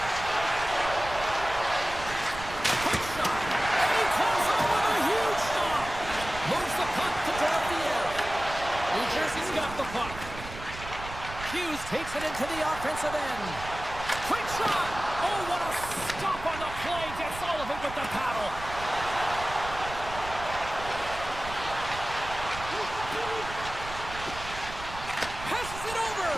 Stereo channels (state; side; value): noise; right; rumble, 12 dB below the sound